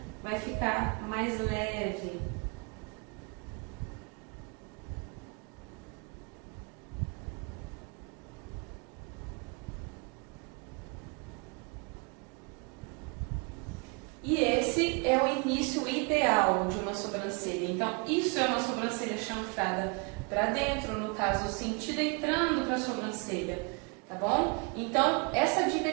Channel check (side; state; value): left; quieter; 33.0 dB